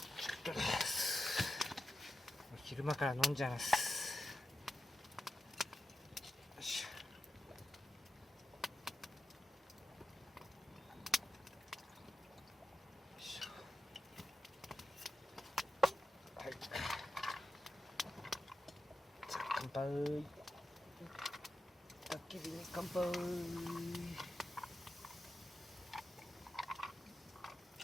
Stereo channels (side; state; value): both; normal; correlation 0.90